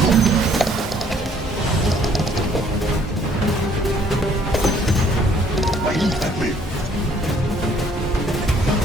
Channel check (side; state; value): both; normal; correlation 0.62